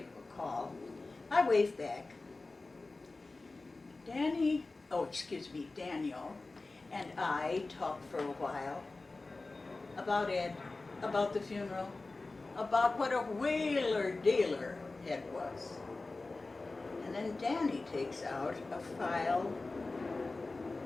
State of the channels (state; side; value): quieter; right; 3.4 dB